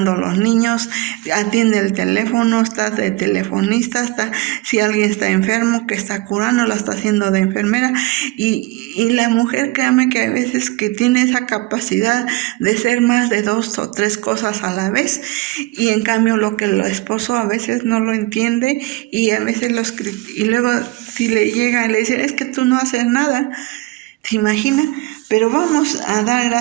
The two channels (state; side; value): quieter; left; 21.3 dB